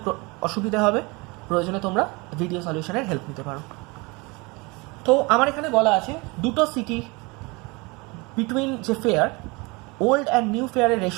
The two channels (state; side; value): quieter; left; 26.5 dB